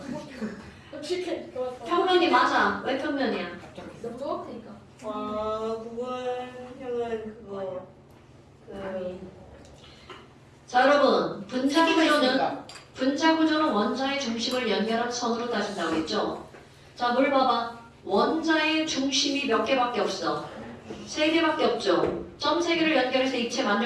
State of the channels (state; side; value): identical; both; correlation 1.00